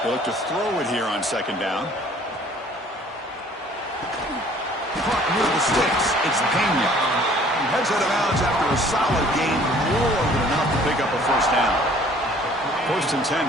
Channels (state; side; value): normal; both; correlation 0.54